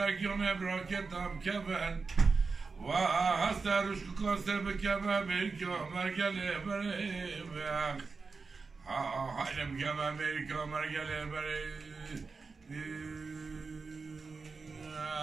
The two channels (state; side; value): quieter; left; 4.5 dB